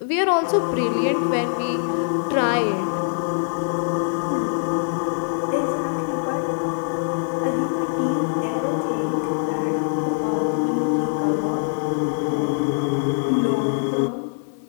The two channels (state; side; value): silent; right; 60 dB below the other